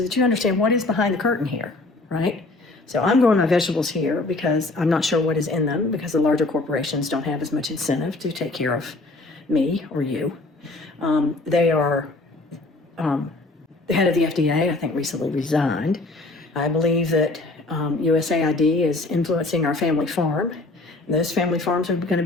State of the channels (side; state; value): right; quieter; 3.1 dB